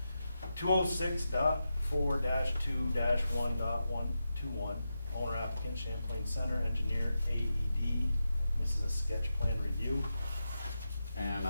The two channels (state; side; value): inverted; both; correlation -0.89